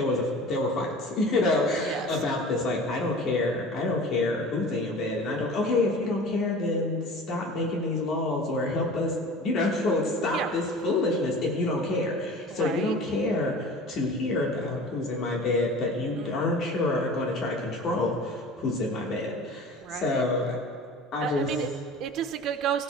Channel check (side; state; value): both; normal; correlation 0.40